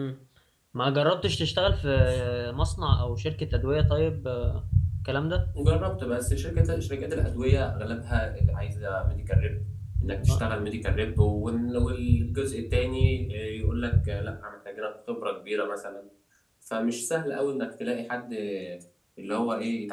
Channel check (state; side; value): identical; both; correlation 1.00